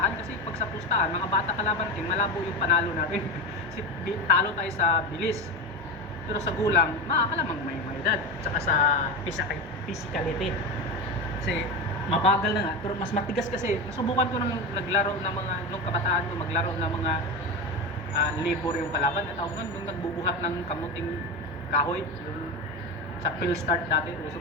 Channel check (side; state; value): both; normal; correlation 0.21